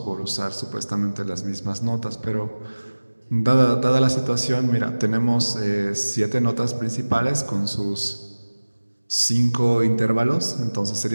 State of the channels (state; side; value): inverted; both; correlation -1.00